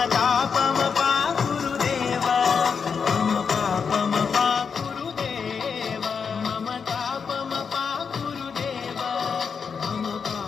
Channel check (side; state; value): right; quieter; 6.0 dB